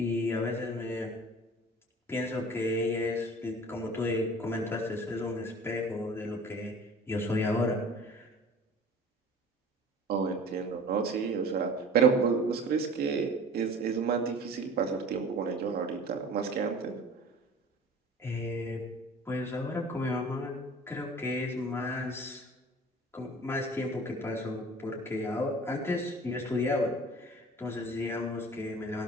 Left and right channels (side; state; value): both; normal; correlation 0.44